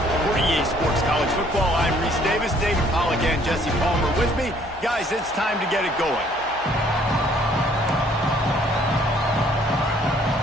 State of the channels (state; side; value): normal; both; correlation 0.61